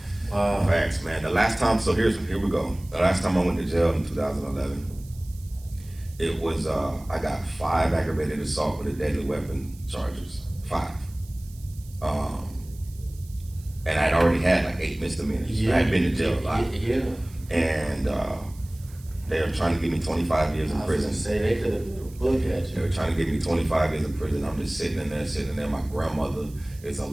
Facts, man. The last time, so here we go. The last time I went to jail in 2011, it was, I got 5 aggravated assault with a deadly weapon charges. 5. And I'd already had like 8 misdemeanors. I had been to jail a lot. Yeah. And they were trying to give me 25 years in prison. Say they could have Look at you. They were trying to get me 25 years in prison. I'm just sitting in there. My grandmother is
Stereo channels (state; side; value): noise; right; hiss, 24 dB below the sound